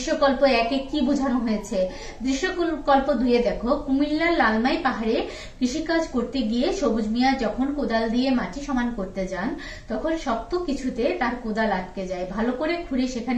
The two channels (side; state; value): both; identical; correlation 1.00